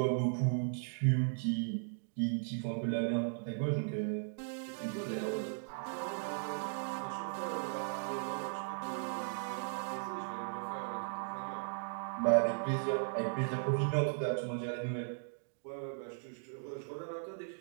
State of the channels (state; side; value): silent; left; digital silence